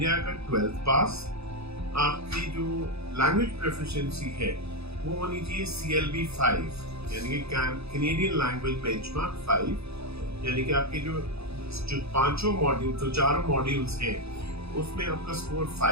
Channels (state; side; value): late; left; 0.79 ms